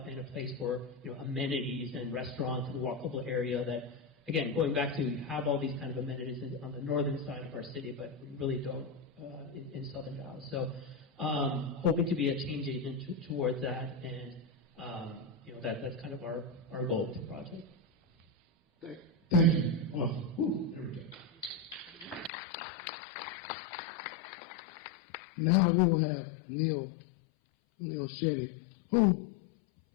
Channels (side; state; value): right; drops out; at 22.3 s